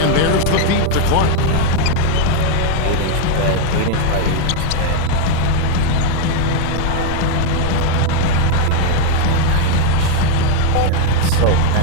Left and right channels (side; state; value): both; different; correlation 0.01